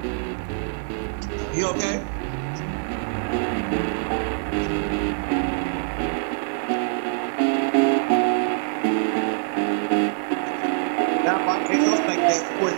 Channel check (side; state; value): left; silent; digital silence